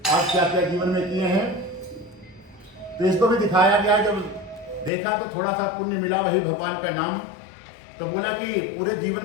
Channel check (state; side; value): drops out; right; at 4.9 s